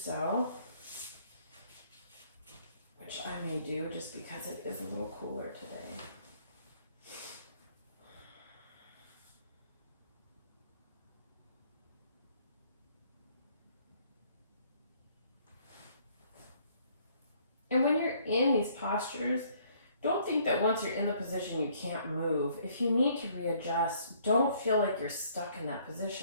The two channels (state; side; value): inverted; both; correlation -0.63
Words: which I may do just because it is a little cooler today. And when you're in these postures, don't think that once you're in the position you can't move. If you need to readjust, don't feel like you're stuck in that